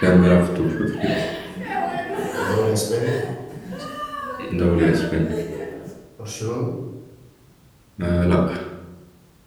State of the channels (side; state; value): both; identical; correlation 1.00